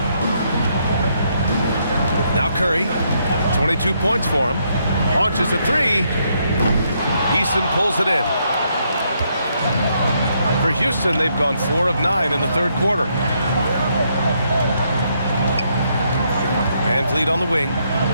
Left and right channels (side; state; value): both; inverted; correlation -0.75